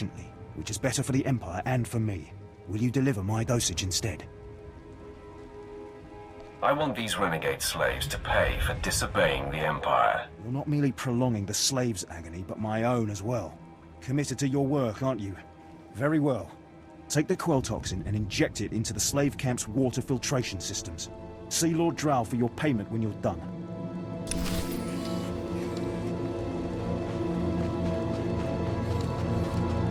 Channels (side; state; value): both; identical; correlation 1.00